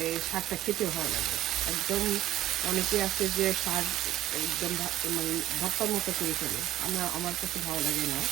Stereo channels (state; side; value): quieter; left; 14.0 dB